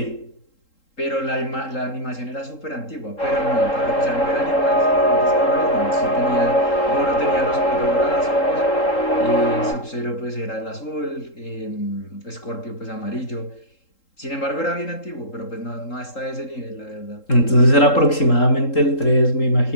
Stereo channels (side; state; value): right; late; 3.8 ms